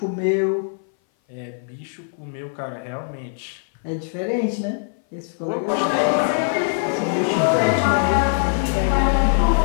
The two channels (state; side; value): silent; right; 60 dB below the other